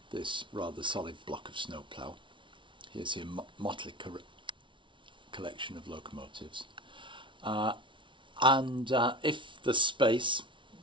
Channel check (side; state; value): left; late; 0.24 ms